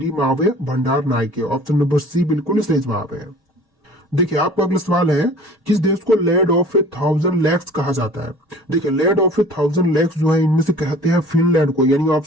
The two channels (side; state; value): both; normal; correlation 0.46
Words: मावे भंडार नायके। ऑप्शन नंबर सी बिल्कुल सही जवाब है। देखिए आपका अगला सवाल है, किस देश को लैंड ऑफ ए 1000 लेक्स कहा जाता है? देखिए लैंड ऑफ ए 1000 लेक्स जो है इनमें से कहते हैं फिनलैंड को, यानी